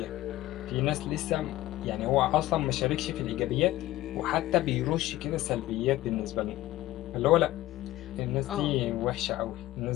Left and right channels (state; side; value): quieter; right; 16.0 dB